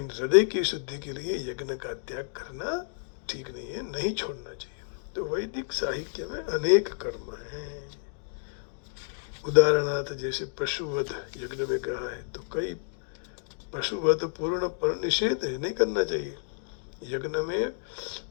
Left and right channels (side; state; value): right; silent; digital silence